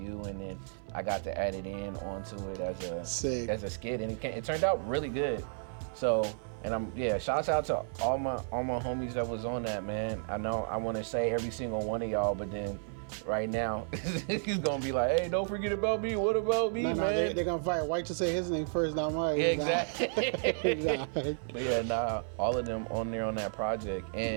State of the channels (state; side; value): silent; left; 56 dB below the other